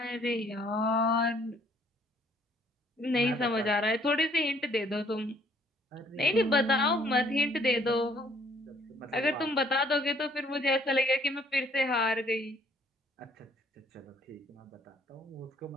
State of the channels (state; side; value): normal; both; correlation 0.63